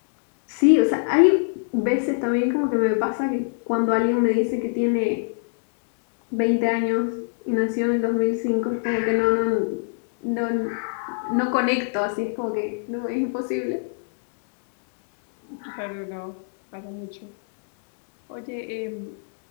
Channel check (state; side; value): silent; right; digital silence